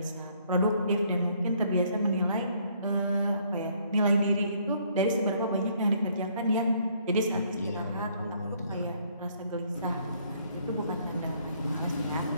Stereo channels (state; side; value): inverted; both; correlation -0.65